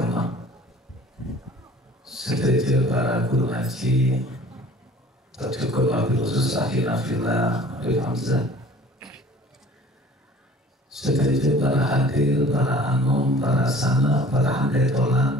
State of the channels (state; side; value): normal; both; correlation 0.48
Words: sebagai para guru ngaji, tercukup wabil khusus akhirna fillah Habib Hamzah, sebagai para hadir, para anum, para sana, para